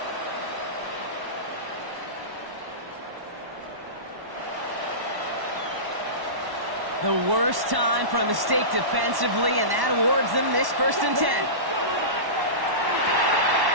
The worst time for a mistake defensively, and that awards them this 1st and 10.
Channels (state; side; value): late; left; 1.1 ms